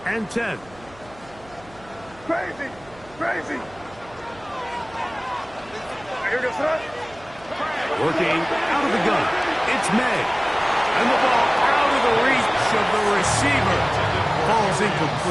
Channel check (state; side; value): noise; right; hum, 24 dB below the sound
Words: and 10. Crazy. Working out of the gun. It's May. And the ball out of the reach of the receiver. Ball's